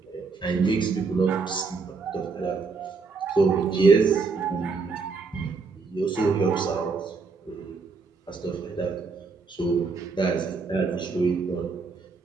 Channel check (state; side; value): quieter; left; 4.6 dB